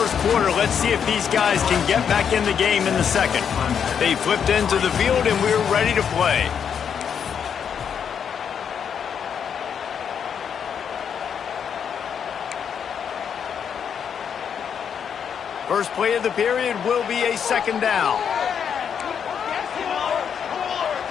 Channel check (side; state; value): right; quieter; 7.6 dB